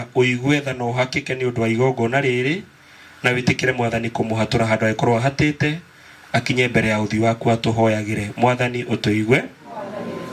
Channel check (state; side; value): identical; both; correlation 1.00